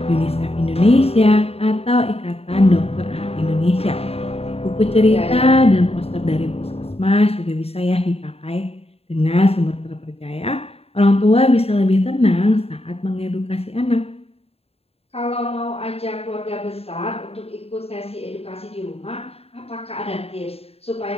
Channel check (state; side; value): late; right; 0.29 ms